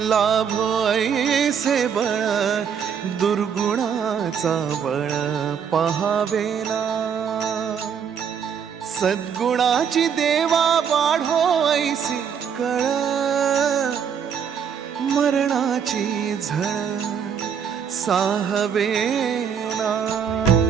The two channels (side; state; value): left; quieter; 7.4 dB